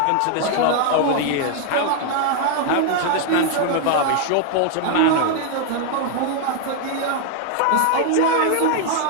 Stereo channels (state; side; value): different; both; correlation 0.00